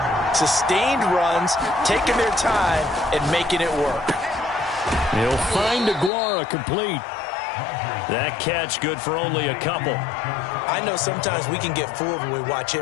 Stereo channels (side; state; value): right; drops out; at 6.1 s